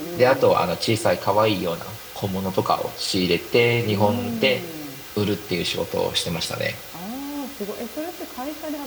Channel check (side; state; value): both; identical; correlation 1.00